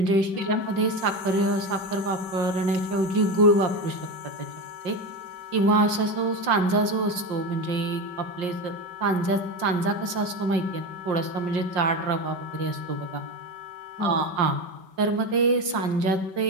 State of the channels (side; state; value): left; late; 5.7 ms